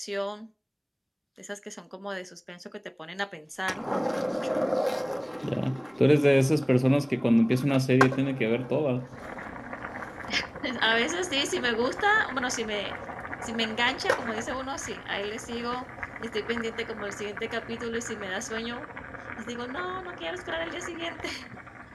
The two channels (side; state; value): both; identical; correlation 1.00